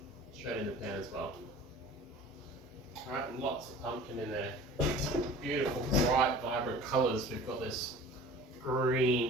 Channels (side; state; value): both; normal; correlation 0.43